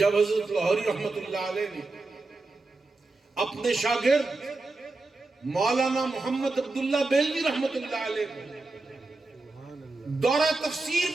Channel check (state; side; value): quieter; left; 3.3 dB